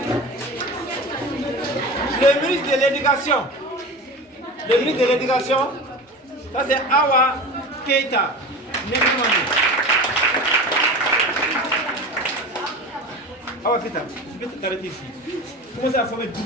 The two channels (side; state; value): both; normal; correlation 0.31